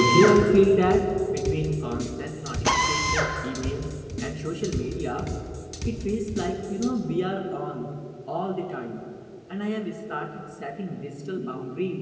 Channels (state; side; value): identical; both; correlation 1.00